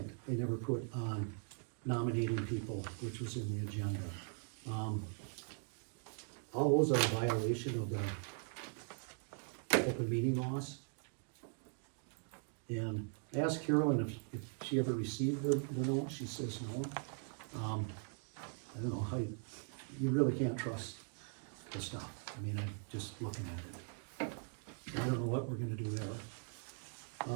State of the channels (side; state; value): left; silent; 51 dB below the other